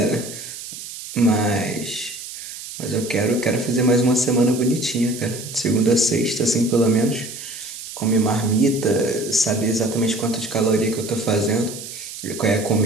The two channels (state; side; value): noise; right; hiss, 11 dB below the sound